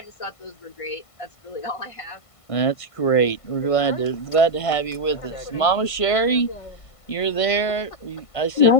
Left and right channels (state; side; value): late; right; 1.5 ms